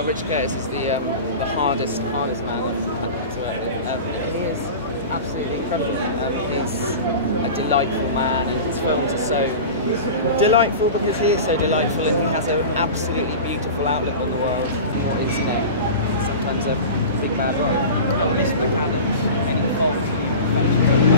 Richard Curtis is the hardest man I've had to work with. He is absolutely incredible. He's a delightful man, and his films are so delightful because he is so delightful, and he has an absolutely beautiful outlook on the world. What is sometimes a big bad world. Miss McAdams, any fault,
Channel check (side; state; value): both; inverted; correlation -0.32